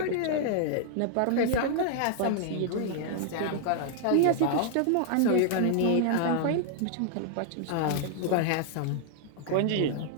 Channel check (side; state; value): both; different; correlation -0.01